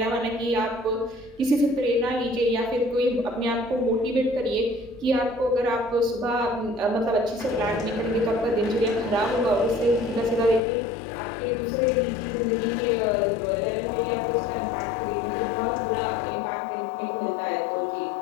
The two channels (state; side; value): drops out; right; at 10.6 s